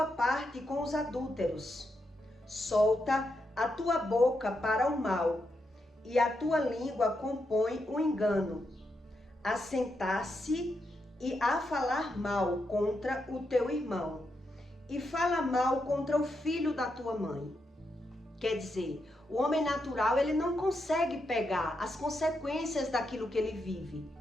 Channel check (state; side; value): normal; both; correlation 0.83